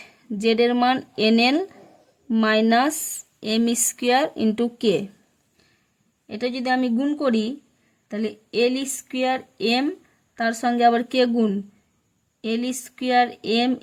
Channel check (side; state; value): both; identical; correlation 1.00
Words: Z এর মান N L minus M square into K. এটা যদি আমি গুণ করি তাহলে এল স্কোয়ার এম তার সঙ্গে আবার কে গুণ L square M